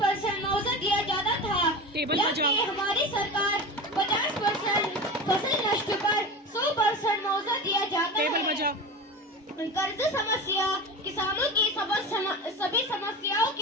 मुआवजा दिया जाता था, टेबल बजाओ। जबकि हमारी सरकार 50% फसल नष्ट पर 100% मुआवजा दिया जाता टेबल है। बजाओ। कर्ज समस्या किसानों की सभी समस्याओं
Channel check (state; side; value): normal; both; correlation 0.28